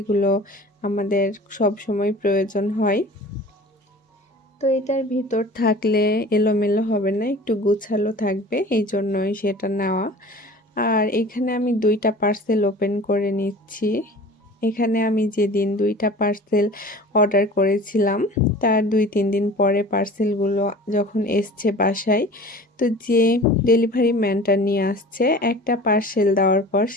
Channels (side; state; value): both; normal; correlation 0.41